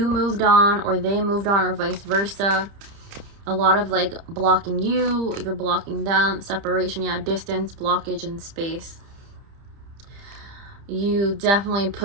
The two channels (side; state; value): left; late; 30 ms